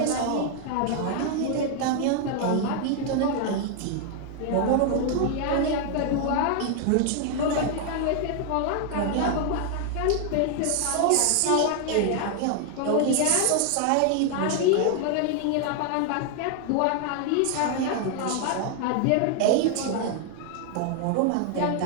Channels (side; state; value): both; different; correlation 0.00